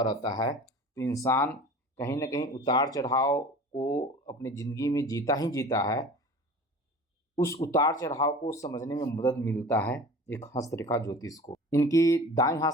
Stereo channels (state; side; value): normal; both; correlation 0.39